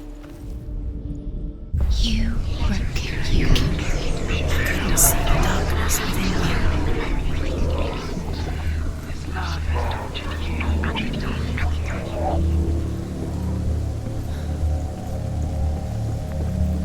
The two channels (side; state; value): both; identical; correlation 1.00